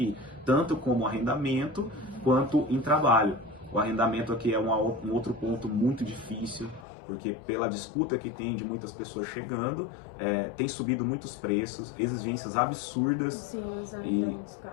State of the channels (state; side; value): drops out; right; at 6.9 s